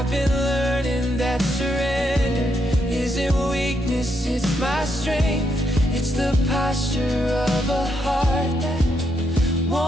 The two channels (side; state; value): both; normal; correlation 0.78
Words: been learning that surrender isn't weakness, it's my strength. It's the posture of a heart that